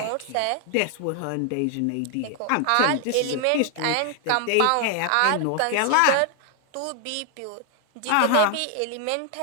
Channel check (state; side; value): different; both; correlation 0.00